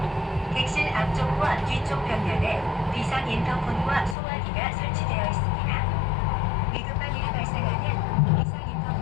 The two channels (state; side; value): drops out; right; at 4.2 s